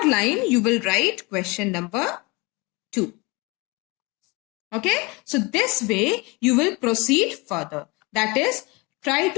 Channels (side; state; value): right; quieter; 26.3 dB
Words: line you will write question number 2. Okay, so this way you will proceed further. That is, try